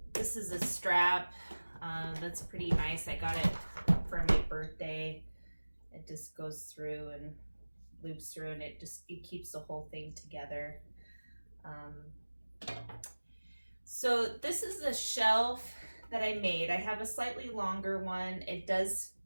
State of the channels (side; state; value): both; inverted; correlation -1.00